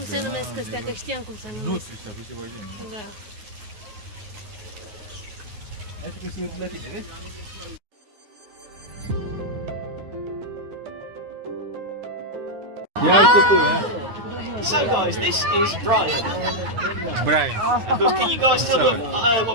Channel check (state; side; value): late; left; 9.4 ms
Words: se numesc astea, că știam cum se numesc. Nu știu, sau ceva genul. Da. Hai să se uită la tine, vezi? Ia uite tu, ha? So guys, this is Brian. Brian. Can you guys tell me